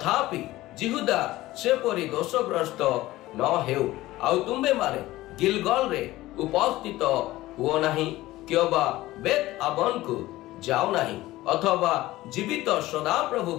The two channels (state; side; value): quieter; right; 17.1 dB